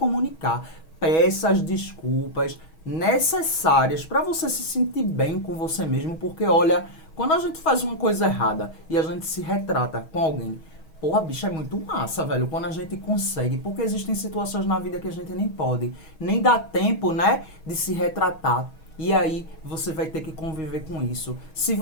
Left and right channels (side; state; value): right; late; 6.2 ms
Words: Peça as desculpas necessárias para você se sentir bem com você mesmo, porque olha, quando a gente faz uma coisa errada e a gente se retrata com alguém, porra, bicho, é muito massa, velho, quando a gente consegue, porque existem situações na vida que a gente nem pode, nem dá tempo, né, de se retratar. E aí, você vai ter que conviver com isso. Se